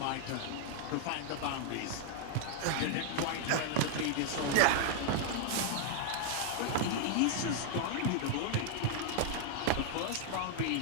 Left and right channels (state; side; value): different; both; correlation 0.00